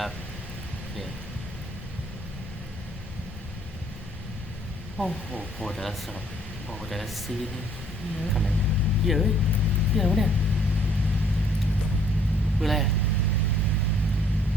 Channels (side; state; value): both; normal; correlation 0.62